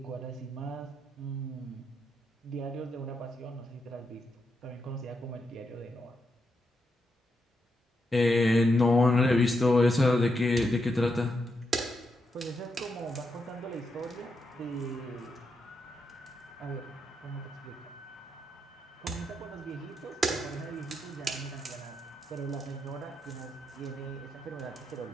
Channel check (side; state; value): both; normal; correlation 0.83